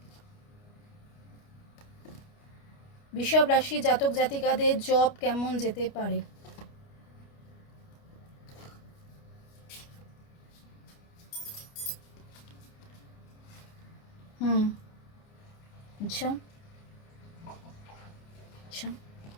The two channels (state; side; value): late; right; 29 ms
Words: বৃষভ রাশি জাতক জাতিকাদের জব কেমন যেতে পারে। अच्छा अच्छा,